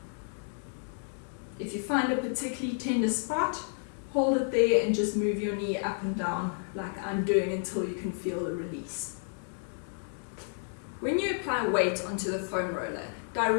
If you find a particularly tender spot, hold it there and just move your knee up and down like I'm doing until you can feel the release. When you apply weight onto the foam roller,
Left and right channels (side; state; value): right; silent; 57 dB below the other